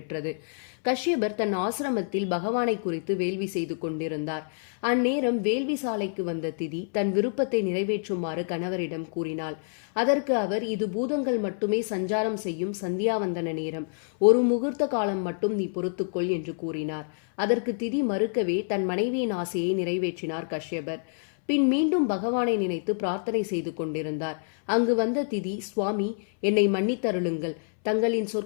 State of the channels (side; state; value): right; silent; 60 dB below the other